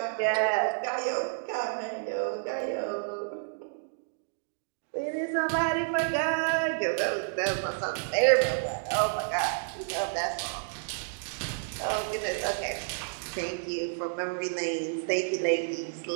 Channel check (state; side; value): silent; left; digital silence